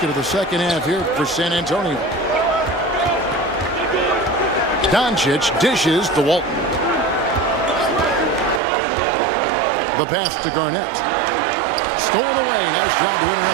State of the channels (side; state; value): left; drops out; at 8.6 s